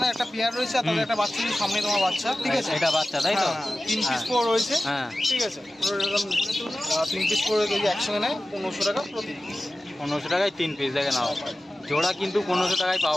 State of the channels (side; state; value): both; normal; correlation 0.95